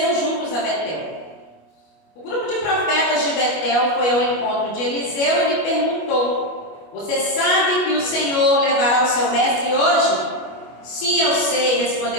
juntos a Betel. O grupo de profetas de Betel foi ao encontro de Eliseu e lhe perguntou: Você sabe que o Senhor levará o seu mestre hoje? Sim, eu sei,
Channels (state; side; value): late; right; 25 ms